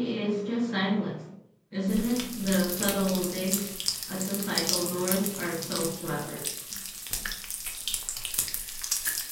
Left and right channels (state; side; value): identical; both; correlation 1.00